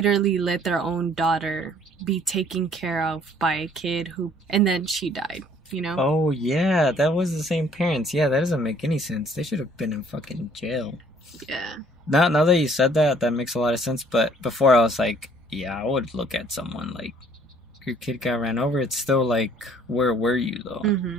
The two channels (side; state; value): both; normal; correlation 0.59